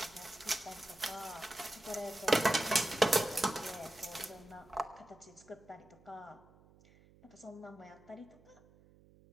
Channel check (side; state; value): right; noise; hum, 26 dB below the sound